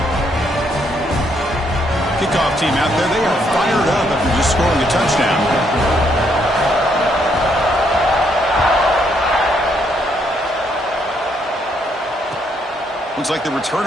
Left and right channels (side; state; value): both; normal; correlation 0.73